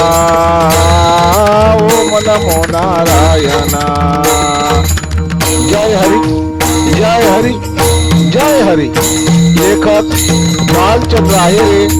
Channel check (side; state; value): both; identical; correlation 1.00